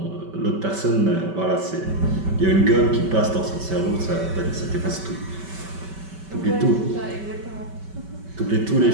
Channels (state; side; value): late; left; 5.2 ms